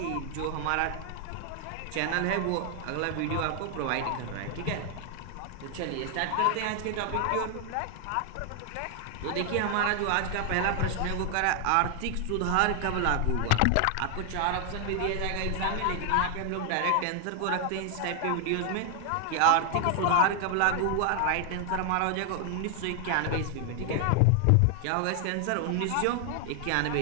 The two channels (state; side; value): different; both; correlation 0.00